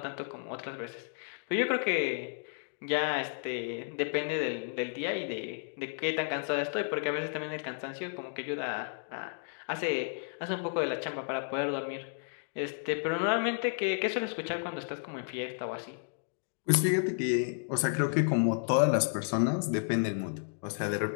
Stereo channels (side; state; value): right; silent; digital silence